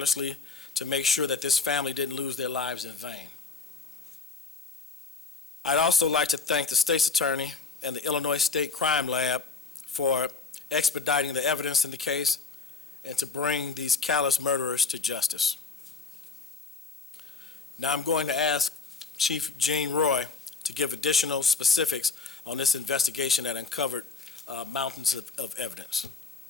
to make sure that this family didn't lose their lives in vain. I'd also like to thank the state's attorney and the Illinois State Crime Lab for expediting the evidence in the case and to bring these callous murderers to justice. Now I'm going to ask Chief Gene Roy to give additional specifics on this investigation that uncovered mountains of evidence.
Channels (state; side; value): quieter; right; 4.5 dB